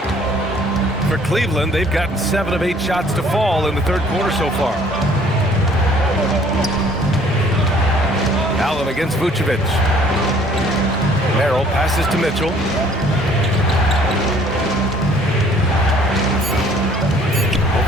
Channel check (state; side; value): normal; both; correlation 0.57